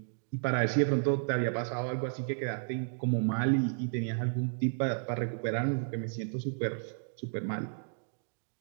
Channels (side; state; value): left; silent; digital silence